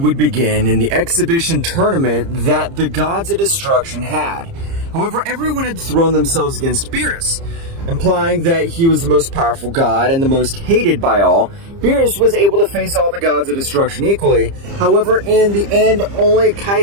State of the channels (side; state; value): left; late; 30 ms